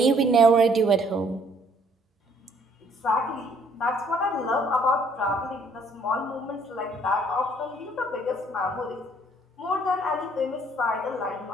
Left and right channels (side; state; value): both; normal; correlation 0.63